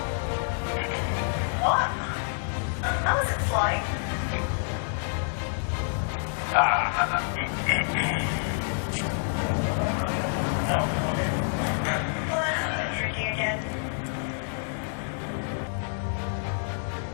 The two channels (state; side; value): silent; right; digital silence